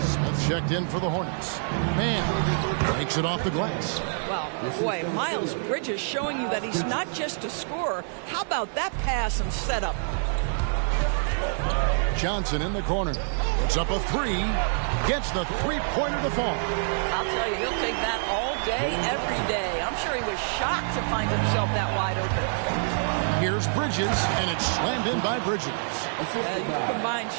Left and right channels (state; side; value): silent; left; digital silence